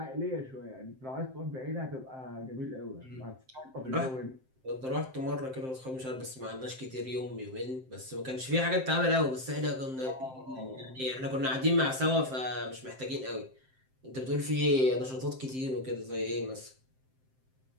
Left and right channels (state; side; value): late; left; 7.7 ms